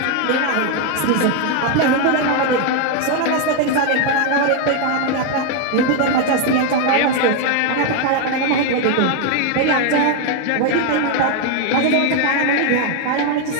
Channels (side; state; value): both; different; correlation 0.01